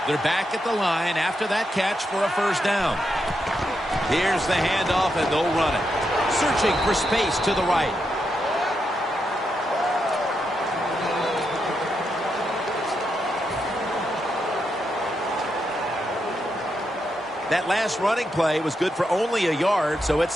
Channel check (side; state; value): both; normal; correlation 0.83